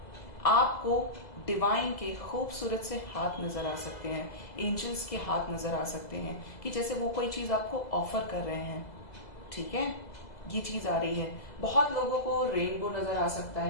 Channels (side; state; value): right; late; 2.0 ms